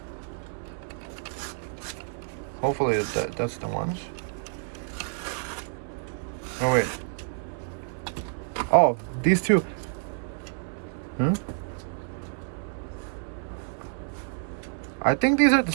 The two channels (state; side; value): silent; left; 59 dB below the other